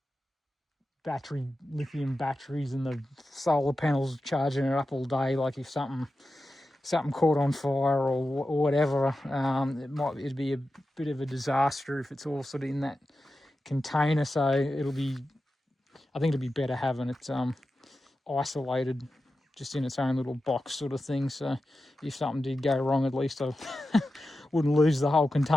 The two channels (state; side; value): normal; both; correlation 0.92